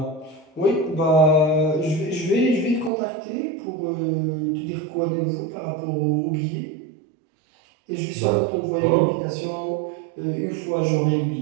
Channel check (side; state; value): left; drops out; at 2.9 s